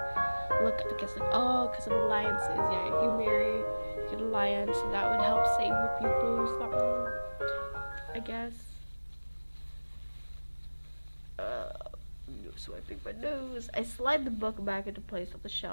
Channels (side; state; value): both; inverted; correlation -1.00